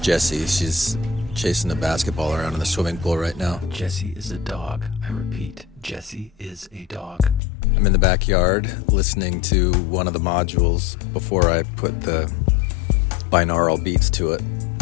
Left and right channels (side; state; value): right; drops out; at 7.4 s